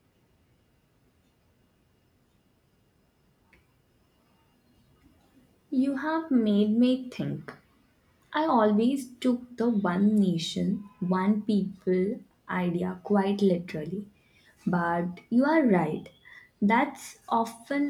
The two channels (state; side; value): identical; both; correlation 1.00